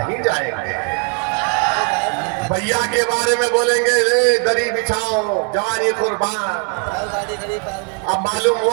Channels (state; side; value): quieter; left; 34.5 dB